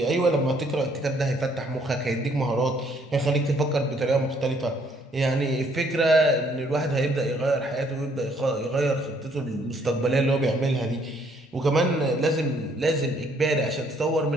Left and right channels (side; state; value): both; normal; correlation 0.66